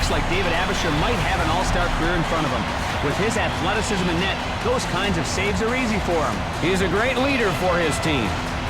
like David Abisher might have an all-star career in front of him. With his athleticism in net, those kinds of saves are easy for him. He's a great leader for his team.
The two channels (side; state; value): both; identical; correlation 1.00